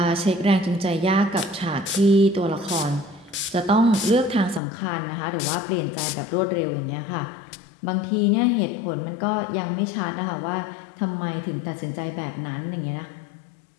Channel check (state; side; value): drops out; right; at 4.6 s